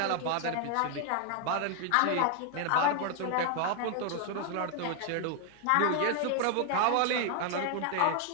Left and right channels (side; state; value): both; different; correlation 0.00